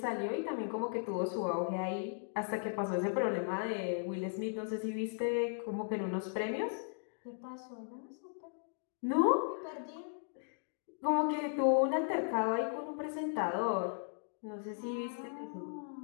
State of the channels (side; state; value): right; silent; digital silence